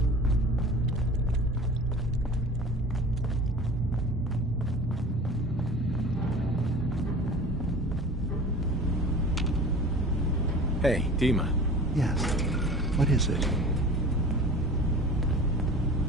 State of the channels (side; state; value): both; normal; correlation 0.40